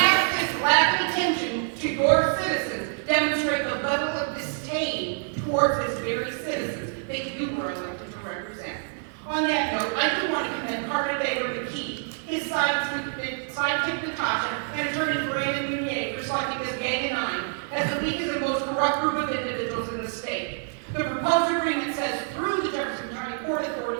this lack of attention to your citizens demonstrate the level of disdain towards this very citizens that you were elected to represent. On that note, I do want to commend Carter Baker McKee, his sidekick Natasha, and attorney Brandon Meunier for selecting this Gang of Nine as the weakest and most corrupt group of individuals in the state. The proposed agreement says through the Jefferson County Port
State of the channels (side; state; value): left; silent; 61 dB below the other